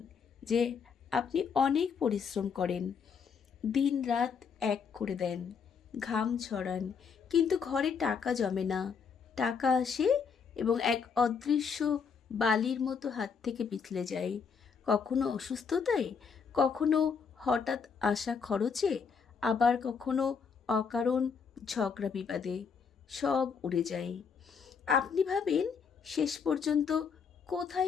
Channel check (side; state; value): right; quieter; 6.1 dB